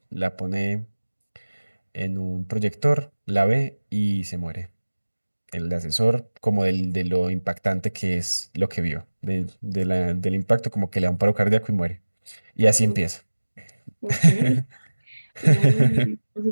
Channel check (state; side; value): inverted; both; correlation -1.00